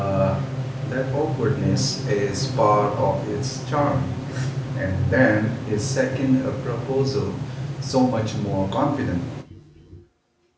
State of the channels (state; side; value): identical; both; correlation 1.00